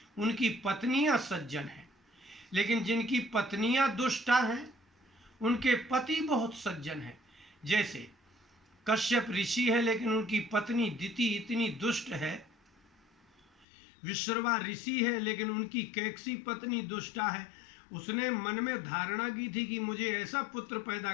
उनकी पत्नियां सज्जन हैं, लेकिन जिनकी पत्नियां दुष्टा हैं उनके पति बहुत सज्जन हैं। जैसे कश्यप ऋषि है लेकिन उनकी पत्नी दिति इतनी दुष्ट है। विश्रवा ऋषि है लेकिन उनकी कैकसी पत्नी दुष्टा है। उसने मन में धारणा की थी कि मुझे ऐसा पुत्र पैदा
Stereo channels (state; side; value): drops out; right; at 13.7 s